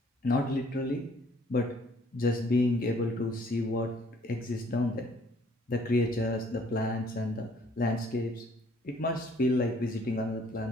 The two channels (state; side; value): normal; both; correlation 0.60